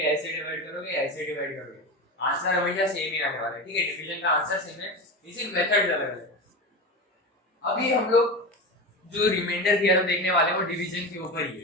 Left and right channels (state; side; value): normal; both; correlation 0.23